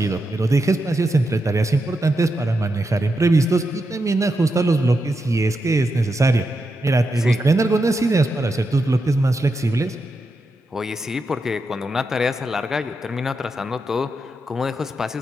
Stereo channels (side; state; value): both; normal; correlation 0.86